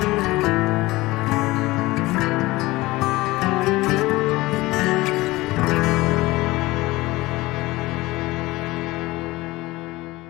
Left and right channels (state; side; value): quieter; right; 19.9 dB